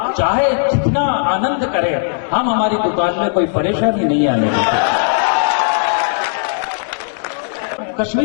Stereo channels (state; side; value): silent; right; digital silence